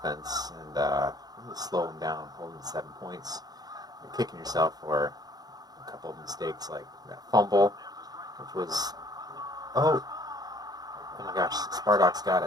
and really slow them down, hold them to 7 points. You're kicking yourself for a couple of mistakes like that fumble, which was, oh my gosh, Spartak's got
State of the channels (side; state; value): left; late; 0.19 ms